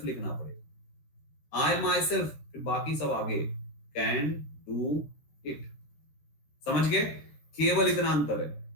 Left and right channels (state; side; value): late; right; 14 ms